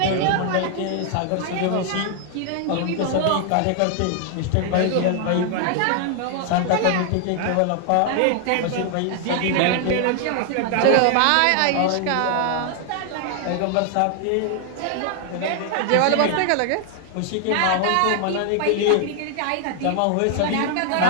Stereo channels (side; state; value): both; different; correlation 0.00